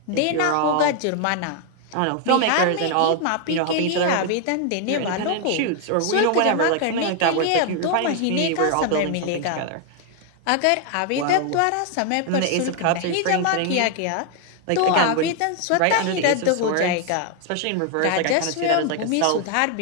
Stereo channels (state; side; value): different; both; correlation 0.00